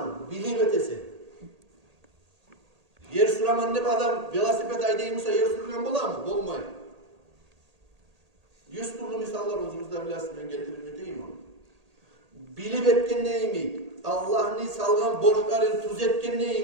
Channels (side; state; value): left; late; 1.8 ms